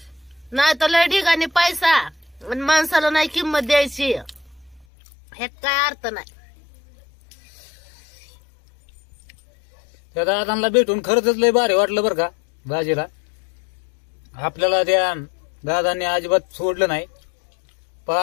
नाही तर लय ठिकाणी पैसा आणि माणसाला नाही किंमत द्यायची ह्यात काय अर्थ नाही त्या दादांना भेटून खरंच लय भारी वाटलं बरं का दाजीला आपल्याला त्या दादांनी अजिबात सोडलं नाही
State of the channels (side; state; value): right; drops out; at 4.9 s